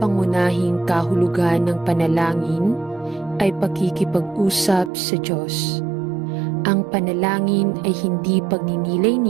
kahulugan ng panalangin ay pakikipag-usap sa Diyos. Ang panalangin ay hindi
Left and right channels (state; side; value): drops out; left; at 4.9 s